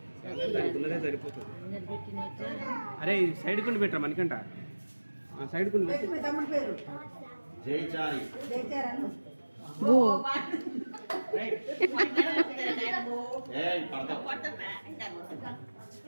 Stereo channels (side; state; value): both; inverted; correlation -1.00